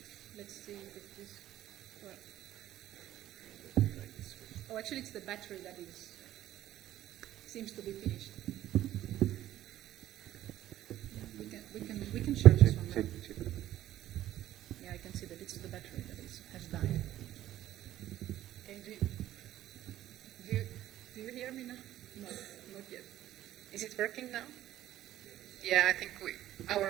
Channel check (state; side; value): quieter; left; 13.3 dB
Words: Let's see if this works. Oh, actually, it's the battery that seems to be finished. We can share this one now. Yeah, I can see that it's the battery that has died. Okay, do you hear me now? No, not yet. Is it working now? Yeah, I think